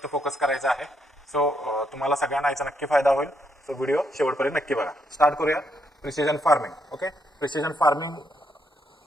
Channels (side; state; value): both; normal; correlation 0.76